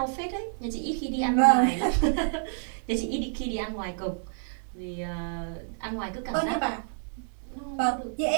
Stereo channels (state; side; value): silent; left; digital silence